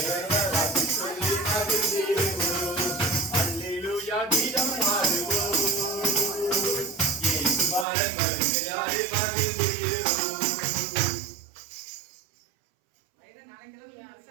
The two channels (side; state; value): left; drops out; at 7.9 s